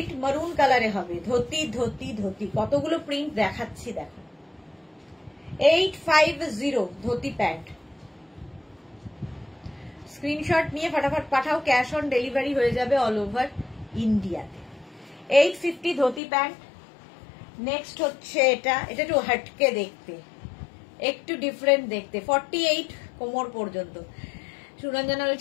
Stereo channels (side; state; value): right; drops out; at 16.2 s